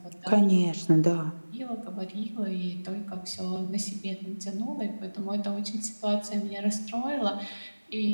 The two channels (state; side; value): inverted; both; correlation -1.00